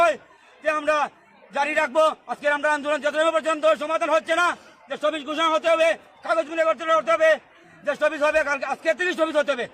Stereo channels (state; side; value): identical; both; correlation 1.00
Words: যে আমরা জারি রাখবো। আজকে আমরা আন্দোলন যতক্ষণ পর্যন্ত সমাধান হচ্ছে না, যে স্থগিত ঘোষণা হতে হবে, কাগজ মিলে করতে হবে, যে স্থগিত হবে কালকে, আজকে থেকে স্থগিত হতে হবে,